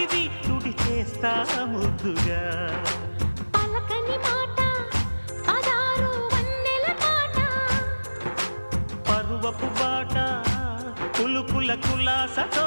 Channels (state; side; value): inverted; both; correlation -1.00